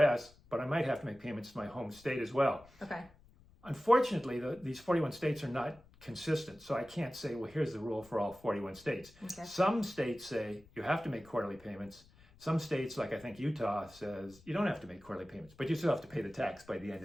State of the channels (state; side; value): noise; left; rumble, 26 dB below the sound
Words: but I might have to make payments to my home state as well. Okay. Unfortunately, these 41 states are not consistent. So I can't say, well, here's the rule for all 41 states. Okay. Some states say you have to make quarterly payments. Some states, like I think Utah, says you don't have to make quarterly payments, but you still have to pay the tax by the end